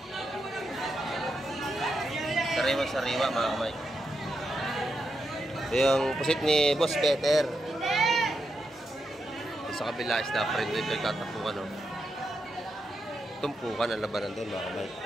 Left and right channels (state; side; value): normal; both; correlation 0.84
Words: Sariwa-sariwa mga kamike. Ito yung pusit ni Boss Peter. Sa kabila is na friend ito yung tatapukan oh. Tumpukan ang labanan doon mga kamike.